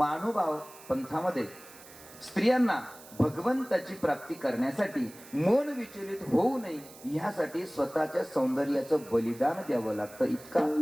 पंथामध्ये स्त्रियांना भगवंताची प्राप्ती करण्यासाठी मन विचलित होऊ नये यासाठी स्वतःच्या सौंदर्याचं बलिदान द्यावं लागतं.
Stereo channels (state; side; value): noise; right; hiss, 20 dB below the sound